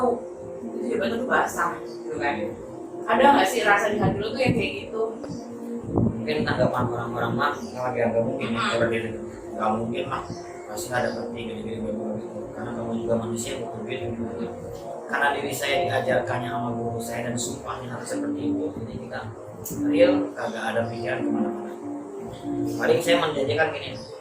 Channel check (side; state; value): both; identical; correlation 1.00